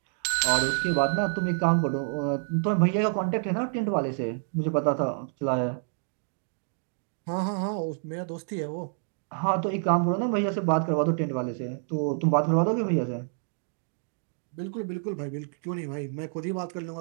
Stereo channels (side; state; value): left; silent; digital silence